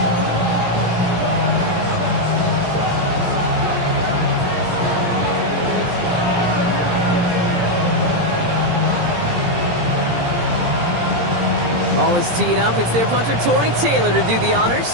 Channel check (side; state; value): left; late; 17 ms